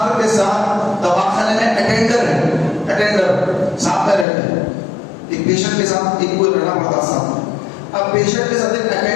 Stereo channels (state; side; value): drops out; right; at 4.2 s